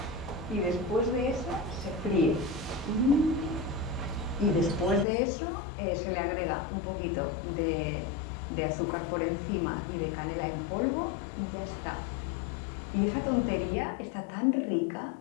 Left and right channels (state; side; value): drops out; right; at 5.1 s